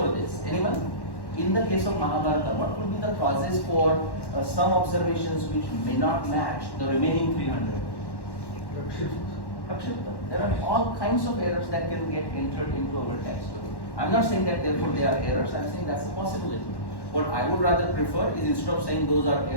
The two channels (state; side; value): late; right; 1.1 ms